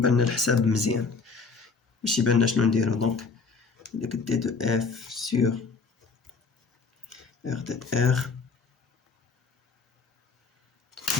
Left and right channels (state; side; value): quieter; right; 4.6 dB